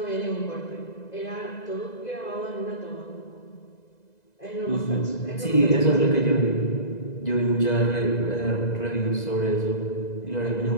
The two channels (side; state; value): right; late; 2.0 ms